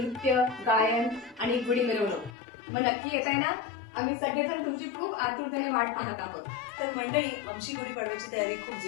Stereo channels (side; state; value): right; drops out; at 2.4 s